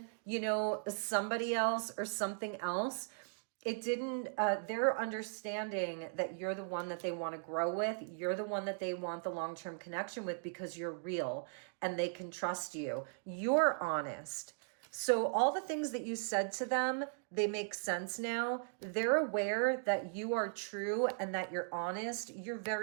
you know, somebody else or something else, it didn't, they're understanding that you're the one that they want to grow with. You're the one that they want the long-term connection with because you're real and they can trust you. You're honest. So all the things that you said to them, they make sense now. They're aware that you are true and that you're honest. You're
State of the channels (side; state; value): left; silent; digital silence